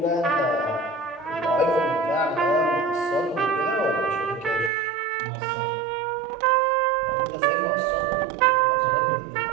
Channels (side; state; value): left; drops out; at 4.7 s